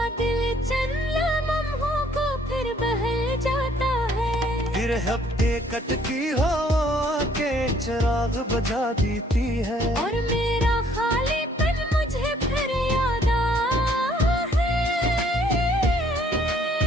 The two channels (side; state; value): both; normal; correlation 0.62